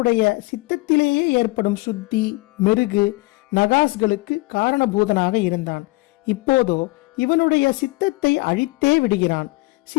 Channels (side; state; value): right; quieter; 23.6 dB